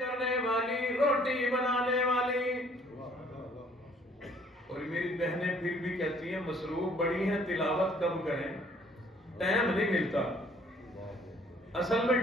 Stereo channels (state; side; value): normal; both; correlation 0.59